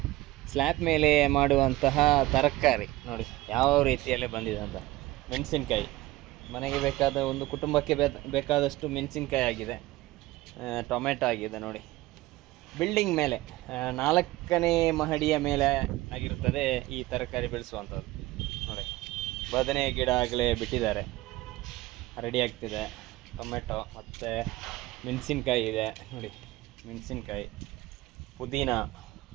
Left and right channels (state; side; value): quieter; left; 18.1 dB